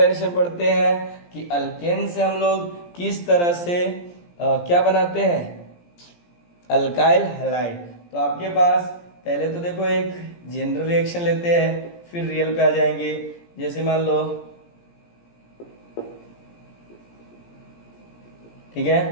पढ़ते हैं कि अल्केन से हम लोग किस तरह से क्या बनाते हैं, अल्काइल हैलाइड। तो आपके पास पहले तो देखो एक जनरल रिएक्शन लेते हैं, फिर रियल पे आ जाएंगे। जैसे मान लो, ठीक है,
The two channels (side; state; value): right; late; 17 ms